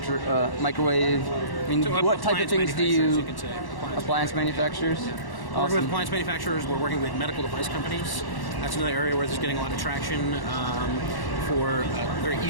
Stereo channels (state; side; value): late; right; 1.1 ms